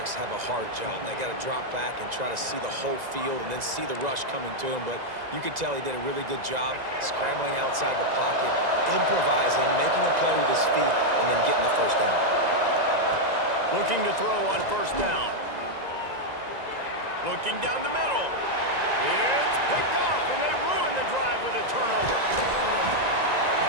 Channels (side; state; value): left; late; 2.0 ms